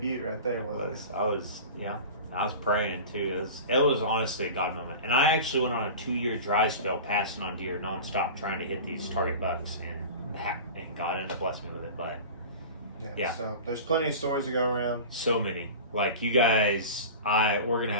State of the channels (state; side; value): inverted; both; correlation -0.34